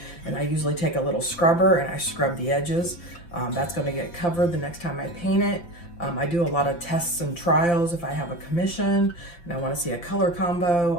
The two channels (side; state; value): right; late; 5.8 ms